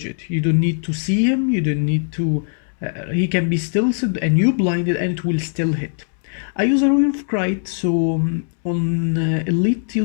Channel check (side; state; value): right; silent; digital silence